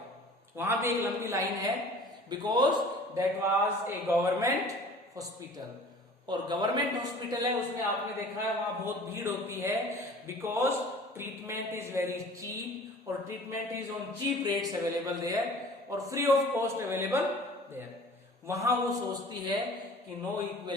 वहां पे एक लंबी लाइन है, because that was a government hospital. और गवर्नमेंट हॉस्पिटल है, उसमें आपने देखा है वहां बहुत भीड़ होती है, because treatment is very cheap, और treatment is on cheap rates available there और free of cost available there. वहां वो सोचती है कि no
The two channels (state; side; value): normal; both; correlation 0.46